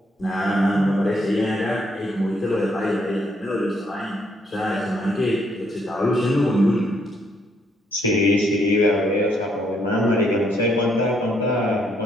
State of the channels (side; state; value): both; normal; correlation 0.72